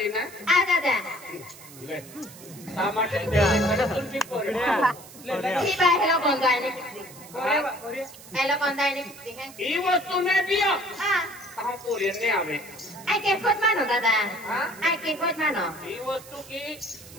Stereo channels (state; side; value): noise; right; hiss, 18 dB below the sound